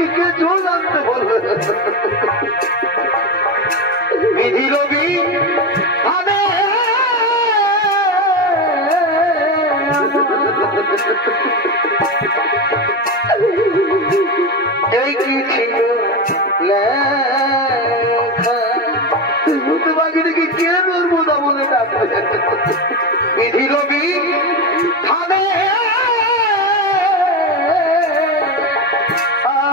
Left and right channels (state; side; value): normal; both; correlation 0.18